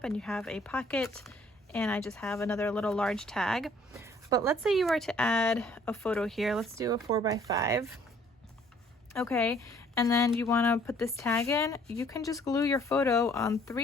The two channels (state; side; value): normal; both; correlation 0.60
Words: and you have a pocket, and I just have another little large tag. But let's say you were to add a photo here. Let's do a 4x5. Okay, and then you want to put this tag in. You can just glue your photo on